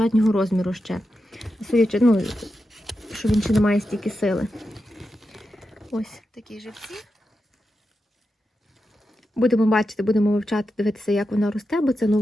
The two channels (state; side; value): normal; both; correlation 0.89